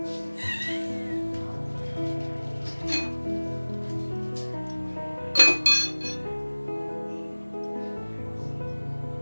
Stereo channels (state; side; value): inverted; both; correlation -1.00